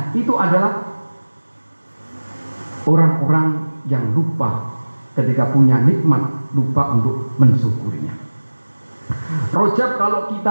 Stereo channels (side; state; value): both; inverted; correlation -1.00